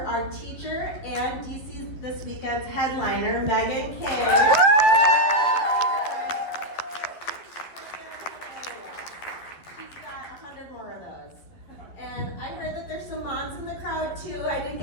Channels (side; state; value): right; late; 12 ms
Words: teacher and DC this weekend's headliner, Megan King. She's got 100 more of those. And I heard that there's some moms in the crowd too. I didn't